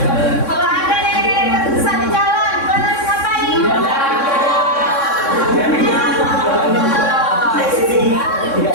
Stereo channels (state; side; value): late; right; 3.6 ms